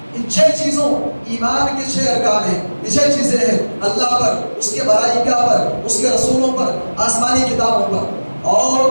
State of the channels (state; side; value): inverted; both; correlation -1.00